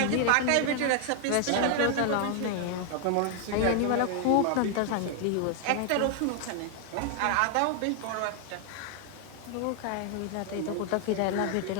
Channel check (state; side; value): different; both; correlation 0.00